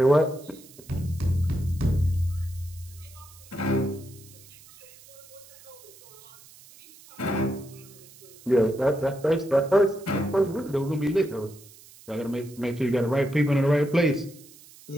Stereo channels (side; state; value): right; noise; hiss, 22 dB below the sound